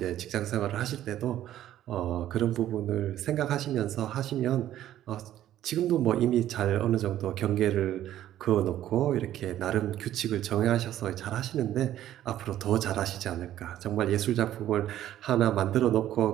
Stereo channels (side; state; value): left; quieter; 12.5 dB